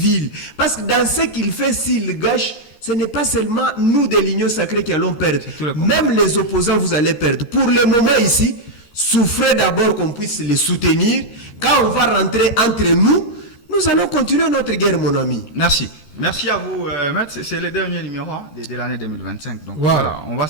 Parce que dans ce qu'il fait, s'il gâche, ce n'est pas seulement nous de l'Union sacrée qui allons perdre. Même les opposants, vous allez perdre. Pour le moment ici, souffrez d'abord qu'on puisse les soutenir. Quand on va rentrer entre nous, nous allons continuer notre guerre, mon ami. Merci. Merci à vous, Maître. C'est le dernier numéro de l'année 2025. Donc voilà, on va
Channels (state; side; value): late; right; 13 ms